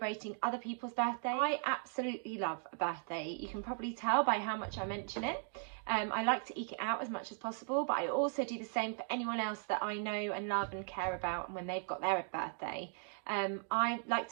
other people's birthday. I absolutely love a birthday. You can probably tell by how much I mention it. I like to eke it out as much as possible, but I also do the same for anyone else that I know and love and care about, and when they've got their birthday. I like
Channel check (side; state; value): left; silent; 53 dB below the other